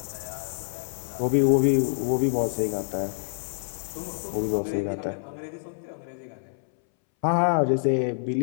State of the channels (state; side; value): silent; right; 60 dB below the other